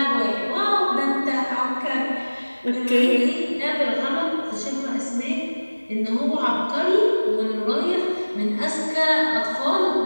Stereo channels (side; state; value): both; inverted; correlation -1.00